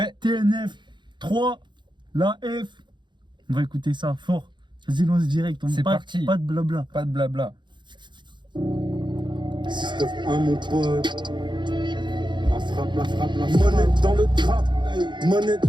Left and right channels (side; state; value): left; late; 0.22 ms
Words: TNF 3, la F. On va écouter ça fort. Vas-y, lance direct. C'est parti. Pas de blabla. Pas de blabla. Système 1 mon pote. La frappe, la frappe, la frappe. Monnaie dans le trap, monnaie